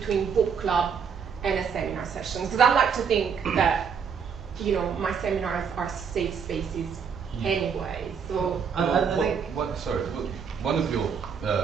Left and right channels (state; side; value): quieter; left; 6.7 dB